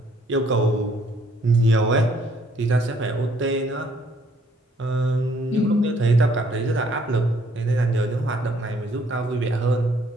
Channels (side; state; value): both; normal; correlation 0.64